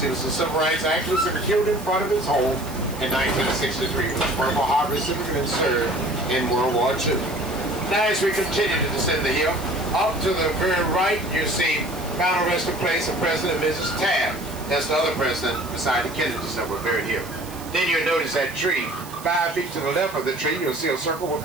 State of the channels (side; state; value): right; noise; hiss, 17 dB below the sound